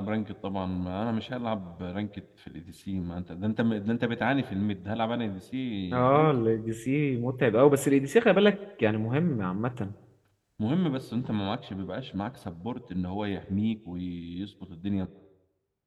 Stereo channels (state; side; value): identical; both; correlation 1.00